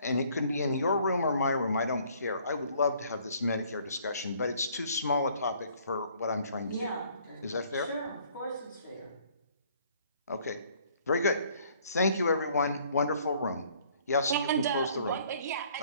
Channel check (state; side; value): inverted; both; correlation -0.60